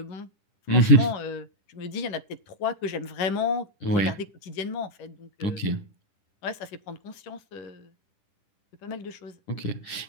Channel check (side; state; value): right; late; 10 ms